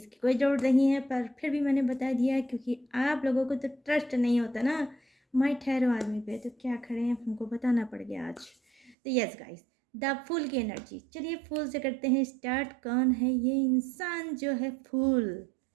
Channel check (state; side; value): drops out; left; at 9.0 s